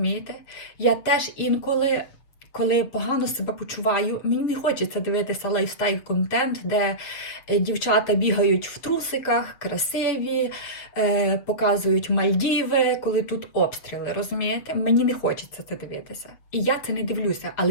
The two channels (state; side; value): late; right; 7.6 ms